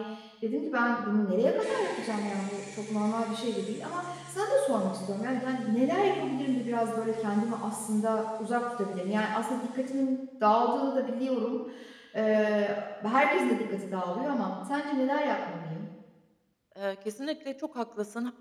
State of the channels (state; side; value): identical; both; correlation 1.00